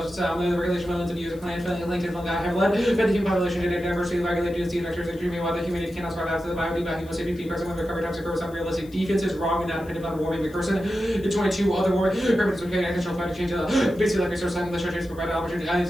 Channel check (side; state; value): left; noise; hiss, 25 dB below the sound